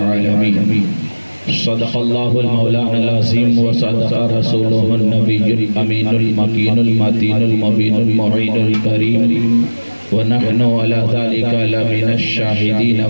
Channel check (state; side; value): inverted; both; correlation -1.00